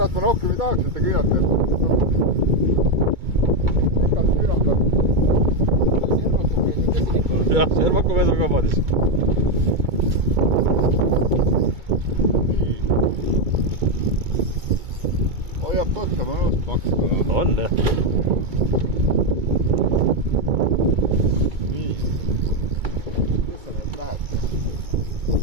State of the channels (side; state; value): left; late; 2.2 ms